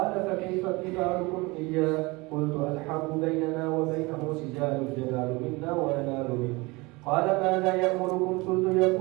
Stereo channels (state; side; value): quieter; left; 24.3 dB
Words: فكيف قتالكم إياه؟ قلت الحرب بيننا وبينه سجال الجلال منا وننال منه. قال ماذا يأمركم؟ قلت